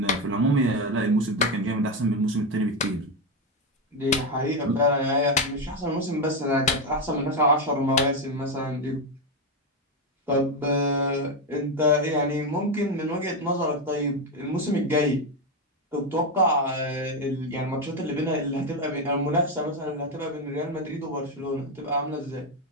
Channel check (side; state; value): both; normal; correlation 0.09